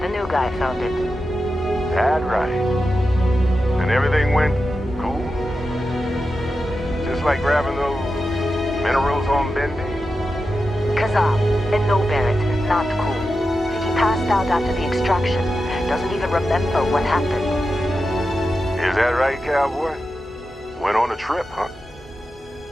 The new guy found it. That right. And everything went cool? Just like grabbing those minerals on Bendy? Kazam, and no, Barrett, not cool. He passed out after the extraction. Doesn't even remember what happened. Is that right, cowboy? Went on a trip, huh?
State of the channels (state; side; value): normal; both; correlation 0.90